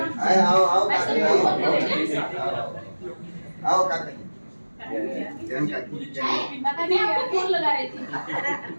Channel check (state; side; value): inverted; both; correlation -1.00